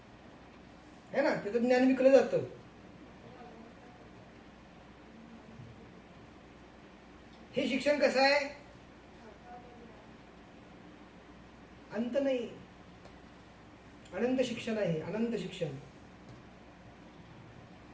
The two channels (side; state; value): both; identical; correlation 1.00